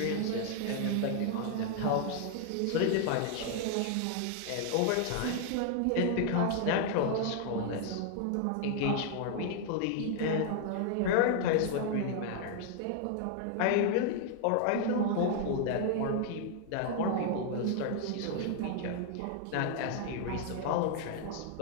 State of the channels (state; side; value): different; both; correlation 0.00